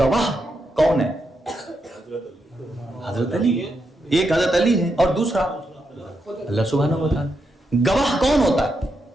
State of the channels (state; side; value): normal; both; correlation 0.83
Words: کون ہے؟ حضرت علی. ایک حضرت علی ہے اور دوسرا اللہ سبحانہ و تعالیٰ. گواہ کون ہوتا ہے؟